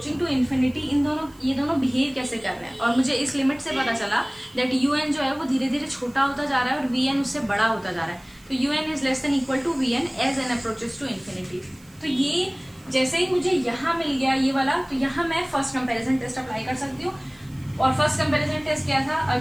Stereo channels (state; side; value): noise; right; hiss, 28 dB below the sound